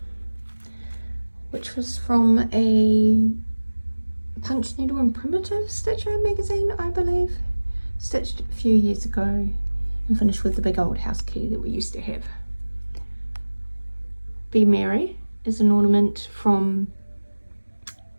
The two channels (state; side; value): inverted; both; correlation -1.00